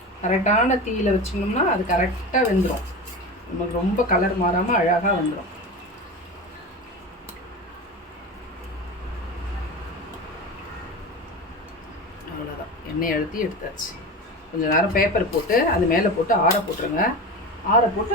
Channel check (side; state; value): both; normal; correlation 0.26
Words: கரெக்டான தீயில் வச்சிங்கோம்னா அது கரெக்டாக வெந்துடும். நமக்கு ரொம்ப கலர் மாறாமல் அழகாக வந்துடும். அவ்வளோதான். எண்ணெய் அழுத்தி எடுத்தாச்சு. கொஞ்சம் நேரம் பேப்பர் போட்டு அது மேலே போட்டு ஆற போட்டுருங்க. ஆற போட்டு